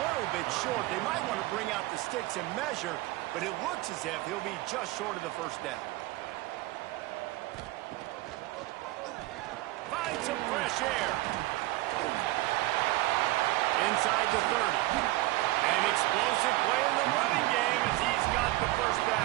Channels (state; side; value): quieter; left; 18.6 dB